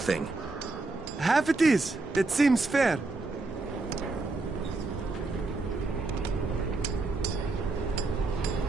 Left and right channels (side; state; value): left; quieter; 3.4 dB